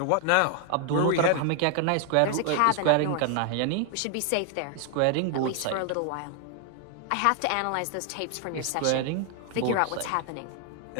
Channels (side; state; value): both; different; correlation 0.00